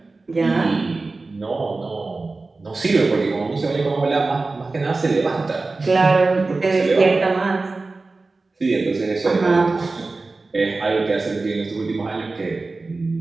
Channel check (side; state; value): left; quieter; 3.6 dB